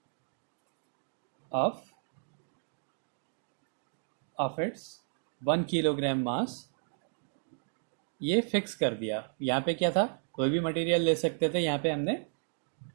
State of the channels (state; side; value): silent; left; digital silence